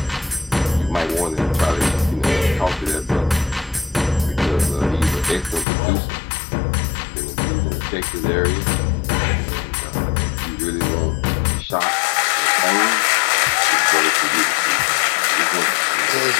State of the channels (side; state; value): right; drops out; at 5.7 s